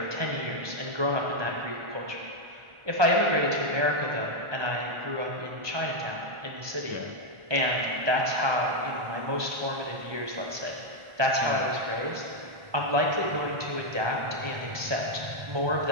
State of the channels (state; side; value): late; left; 1.2 ms